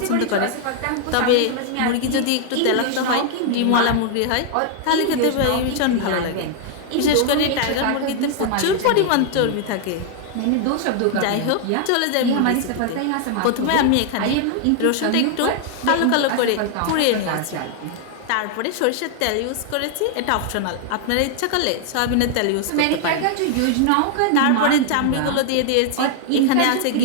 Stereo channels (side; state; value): both; different; correlation 0.00